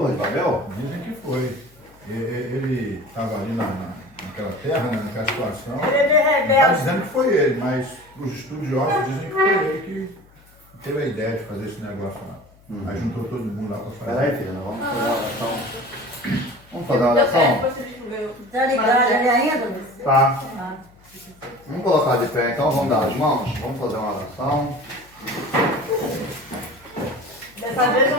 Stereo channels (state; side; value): noise; left; hum, 28 dB below the sound